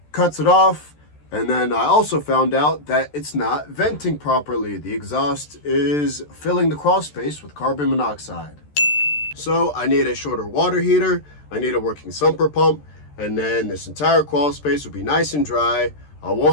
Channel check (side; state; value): right; late; 13 ms